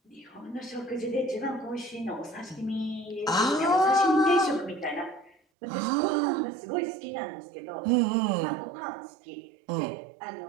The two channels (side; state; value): left; drops out; at 5.4 s